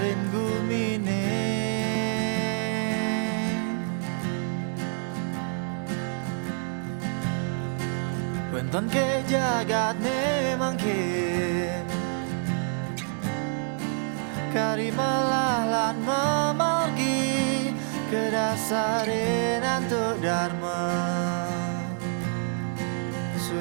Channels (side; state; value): left; silent; 60 dB below the other